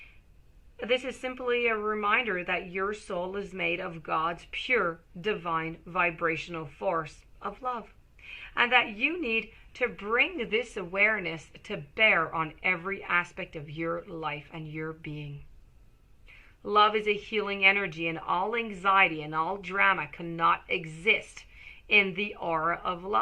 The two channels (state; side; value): identical; both; correlation 1.00